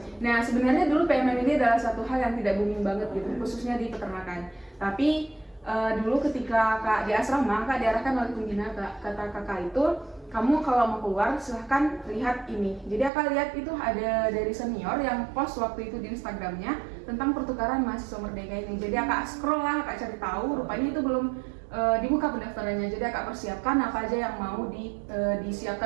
Nah, sebenarnya dulu PMM ini adalah satu hal yang tidak booming banget gitu, khususnya di peternakan. Tapi dulu ketika Kak di asrama, Kak diarahkan oleh pembina, kata Kakak itu, kamu kalau mau keluar silahkan lihat ini. Jadi Kakak lihat itu ada dari senior yang post waktu itu di Instagramnya tentang pertukaran mahasiswa Merdeka ini. Jadi Kakak scroll lah, Kakak cari tahu, rupanya itu belum dibuka pendaftarannya. Jadi Kakak persiapkan apa aja yang mau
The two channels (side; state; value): left; drops out; at 13.1 s